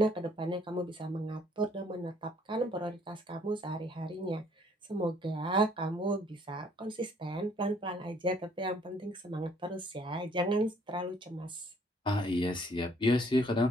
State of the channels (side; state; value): both; normal; correlation 0.62